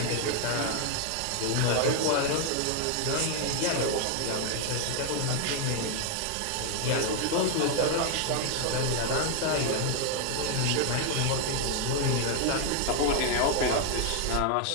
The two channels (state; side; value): different; both; correlation 0.00